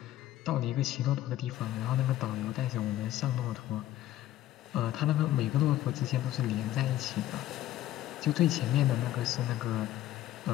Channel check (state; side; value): quieter; right; 13.7 dB